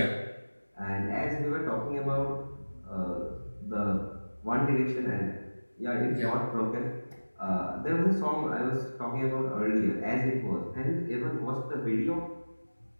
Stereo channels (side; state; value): both; inverted; correlation -1.00